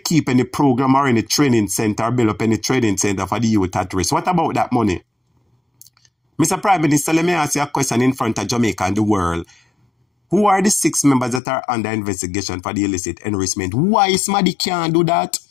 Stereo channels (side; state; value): right; drops out; at 11.4 s